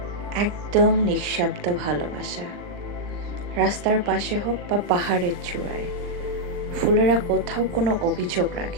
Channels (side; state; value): left; late; 40 ms